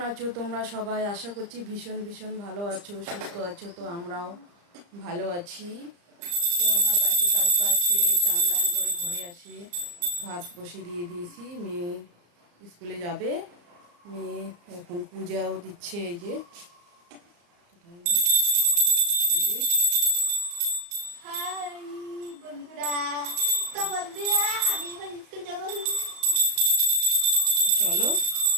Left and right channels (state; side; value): late; left; 35 ms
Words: আছো তোমরা সবাই? আশা করছি ভীষণ ভীষণ ভালো আছো, সুস্থ আছো। তো আমরাও ভালো আছি। তো আমার বাকি কাজ বাজ সেরে চান দান করে ঘরে আসি, ভাত বসিয়ে দিয়ে দিয়েছি। মেয়ে স্কুলে যাবে, মেয়ে এখন পূজাও দিচ্ছে। এই যে এই যে হাই বন্ধুরা, বন্ধুরা আমি এখন স্কুল যাবো। তো চলো,